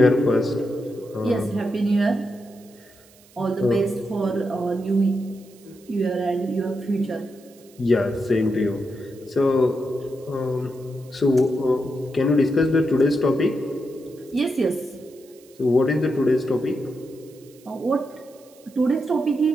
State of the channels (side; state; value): right; noise; hiss, 27 dB below the sound